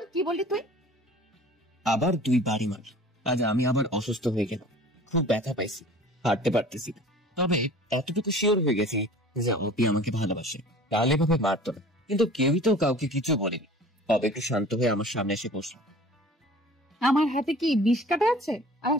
কি বললি তুই? আবার দুই বাড়ি মার। আজ আমি আবার অসুস্থ হয়ে গেলাম, খুব ব্যথা পাইছি, হাঁটতে পারতেছি না। তবে এতটুকু শিওর হয়ে গেছি যে অপি আমাকে ভালোবাসে, তাহলে এভাবে মারতো না। কিন্তু কেউই তো কাউকে কিছু বলেনি। তবে একটু শান্ত হয়ে আমার সামনে এসে বসল। আমার হাতে কি বিষ কাটা আছে? আর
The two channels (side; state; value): both; normal; correlation 0.45